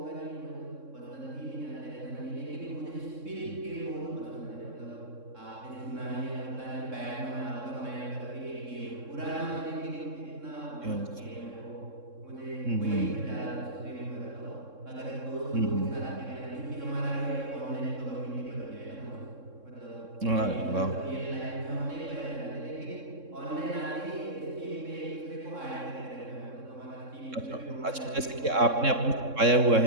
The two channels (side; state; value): left; late; 3.6 ms